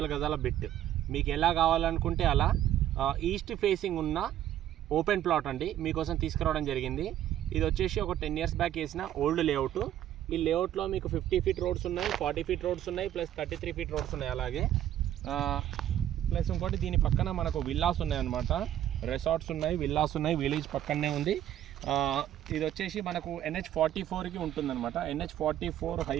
గజాల బిట్ మీకు ఎలా కావాలనుకుంటే అలా ఈస్ట్ ఫేసింగ్ ఉన్న ఓపెన్ ప్లాట్ అండి మీకోసం తీసుకురావడం జరిగింది. ఇది వచ్చేసి ఒక 10 years బ్యాక్ వేసిన ఓల్డ్ లేఅవుట్. ఈ లేఅవుట్లో మీకు 50 feet రోడ్స్ ఉన్నాయి, 40 feet రోడ్స్ ఉన్నాయి, ప్లస్ 33 feet రోడ్స్ ఉన్నాయి. అలాగే ప్లస్ ఇంకోటి దీని పక్కన మనకు విల్లాస్ ఉన్నాయన్నమాట. రిసార్ట్స్ ఉన్నాయి, విల్లాస్ ఉన్నాయి, విలేజ్ పక్కనే ఉంది. ఇది వచ్చేసి మనకు NH44కి ఉంటుందన్నమాట. NH44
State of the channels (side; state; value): left; quieter; 11.9 dB